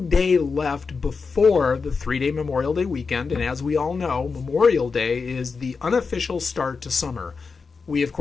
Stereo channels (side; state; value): right; quieter; 4.9 dB